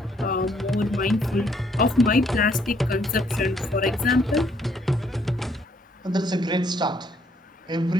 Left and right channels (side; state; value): both; normal; correlation 0.68